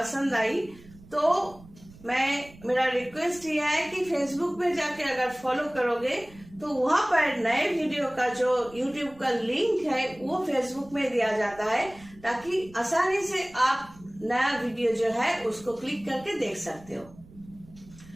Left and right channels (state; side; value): noise; right; rumble, 22 dB below the sound